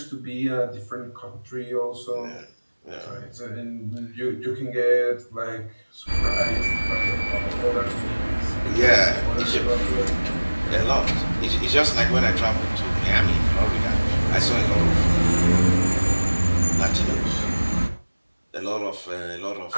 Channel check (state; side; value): inverted; both; correlation -1.00